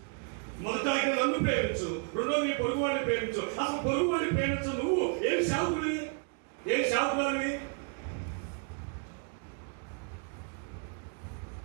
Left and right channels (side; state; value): left; quieter; 39.3 dB